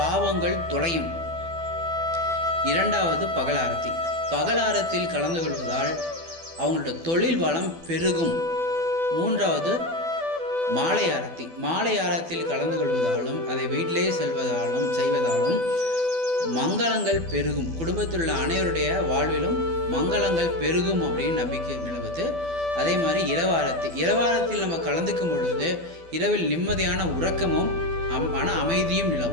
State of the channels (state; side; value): late; left; 12 ms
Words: தொலையும். இரண்டாவது பகல் ஆரத்தி. பகல் ஆரத்தியில் கலந்து கொள்வதால் அவங்களோட தொழில் வளம் பெருகும். மூன்றாவது மாலை ஆரத்தி. மாலை ஆரத்தியில் கலந்து கொள்வதாலும் அதை வீட்டிலேயே செய்வதாலும் மங்களங்கள் பெருகும். குடும்பத்தில் உள்ள அனைவருடைய வாழ்விலும் மங்களங்கள் பெருகும் அப்படின்னு நம்பிக்கை நிலவுது. அதே மாதிரி இரவாரத்தில் நம்ம கலந்துக்கும் பொழுது இரவில் நிம்மதியான உறக்கமும் மன அமைதியும்